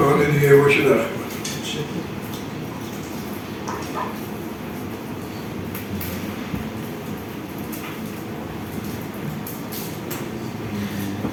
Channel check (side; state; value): both; identical; correlation 1.00